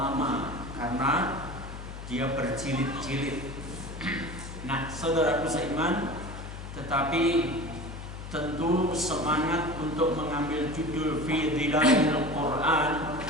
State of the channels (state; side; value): noise; left; hum, 10 dB below the sound